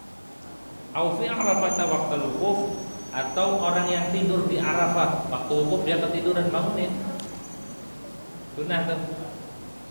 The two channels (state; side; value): inverted; both; correlation -1.00